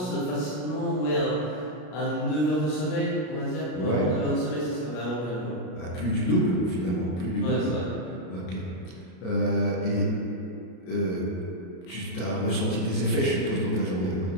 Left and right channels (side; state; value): right; late; 33 ms